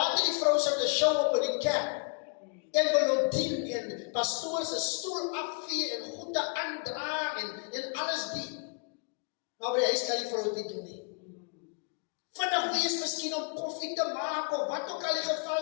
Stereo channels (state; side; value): quieter; right; 37.7 dB